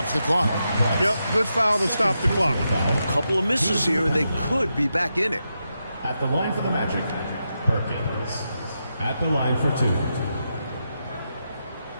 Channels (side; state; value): both; inverted; correlation -0.86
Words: the clock. Yep, good foul to stop the clock. A couple of misses here, and they could be back in it. At the line for the Magic, Perkins. At the line for 2.